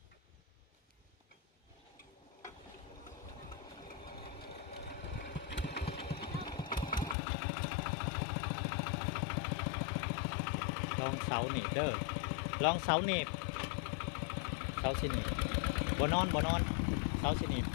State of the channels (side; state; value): right; drops out; at 7.2 s